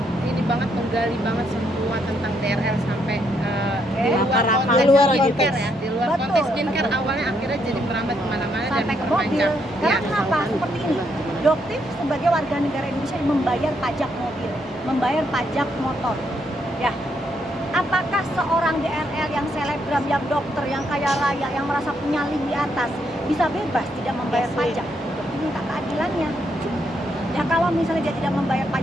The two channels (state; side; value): normal; both; correlation 0.75